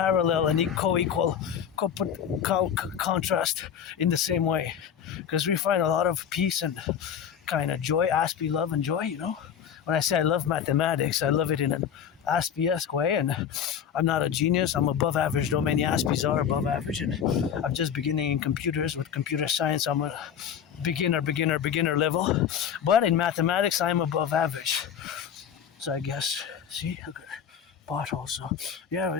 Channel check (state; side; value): quieter; right; 8.3 dB